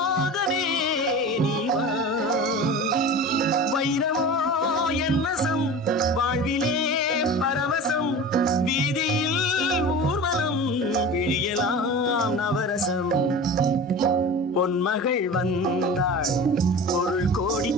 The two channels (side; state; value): both; normal; correlation 0.34